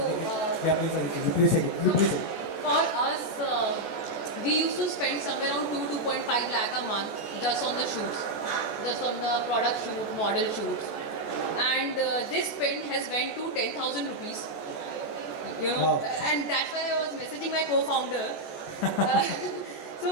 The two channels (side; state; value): right; late; 14 ms